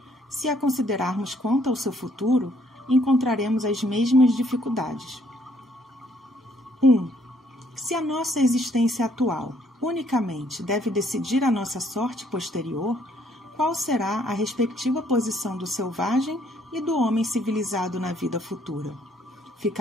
Se a considerarmos quanto ao seu futuro, encontraremos as mesmas dificuldades. 1. Se a nossa existência atual unicamente deve decidir a nossa sorte posterior, qual será a respectiva posição do selvagem e do homem civilizado na vida futura?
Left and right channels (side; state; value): both; normal; correlation 0.66